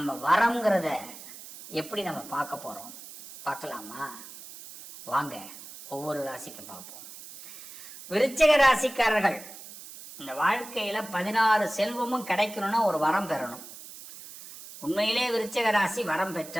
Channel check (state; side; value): noise; right; hiss, 15 dB below the sound